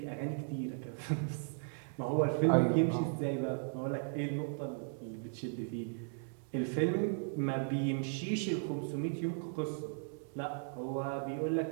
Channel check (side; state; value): left; silent; digital silence